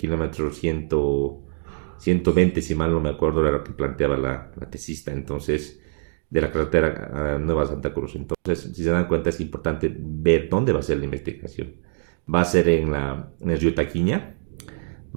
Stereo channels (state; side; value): silent; left; digital silence